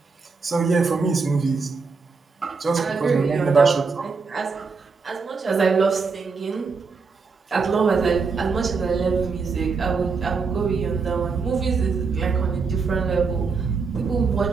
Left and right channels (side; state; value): left; quieter; 4.8 dB